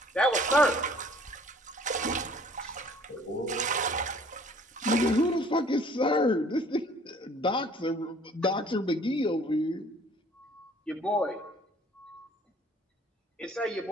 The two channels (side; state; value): both; normal; correlation 0.55